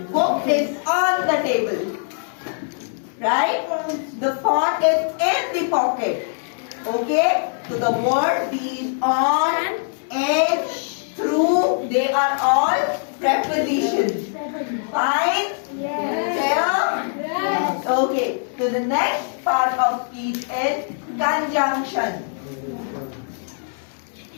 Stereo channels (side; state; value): right; silent; 64 dB below the other